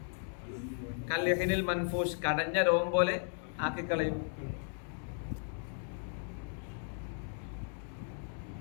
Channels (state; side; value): silent; right; 54 dB below the other